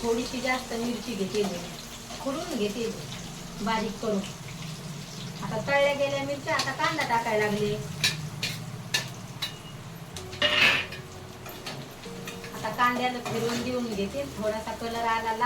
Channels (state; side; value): noise; left; hum, 26 dB below the sound